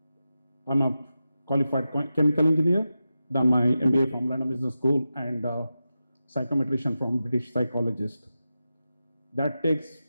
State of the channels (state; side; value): inverted; both; correlation -0.92